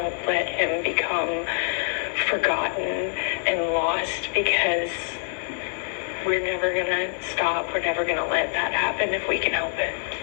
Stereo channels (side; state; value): right; silent; digital silence